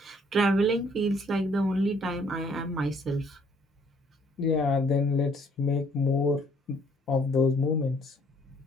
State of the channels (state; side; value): normal; both; correlation 0.63